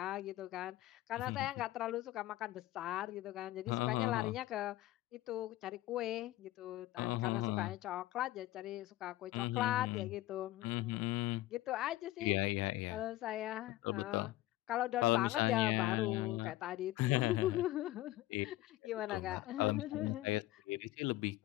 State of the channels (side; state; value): right; quieter; 16.4 dB